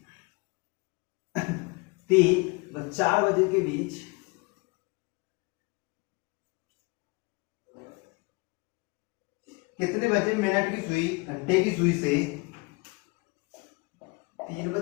3 व 4 बजे के बीच कितने बजे मिनट की सुई घंटे की सुई से 3 व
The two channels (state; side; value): quieter; right; 27.6 dB